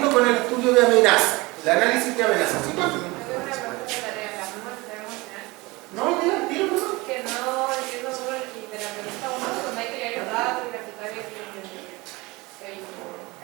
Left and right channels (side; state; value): left; quieter; 23.2 dB